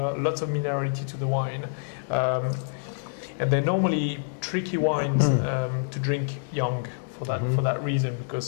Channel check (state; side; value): silent; right; digital silence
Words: lots of minerality to the wine, and they're normally tricky wines to drink young for that reason,